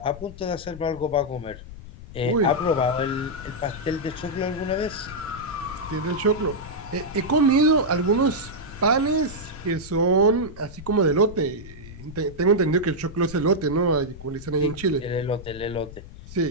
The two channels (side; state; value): left; noise; rumble, 15 dB below the sound